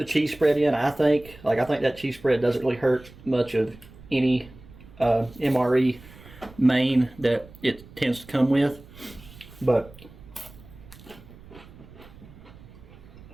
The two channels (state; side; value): noise; right; rumble, 21 dB below the sound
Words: cheese spread in, I think. I think that cheese spread doesn't really hurt much of any MRE main that it tends to come with. But